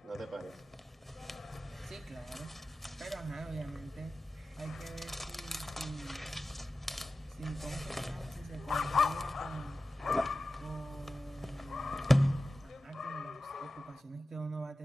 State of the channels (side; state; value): both; normal; correlation 0.94